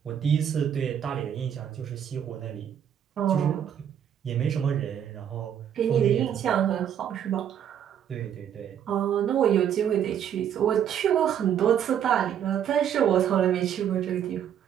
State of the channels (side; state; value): left; quieter; 9.2 dB